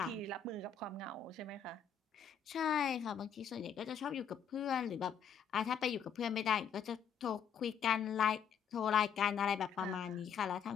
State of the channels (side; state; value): right; quieter; 7.4 dB